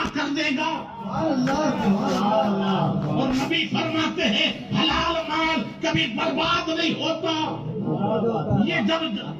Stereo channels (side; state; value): both; identical; correlation 1.00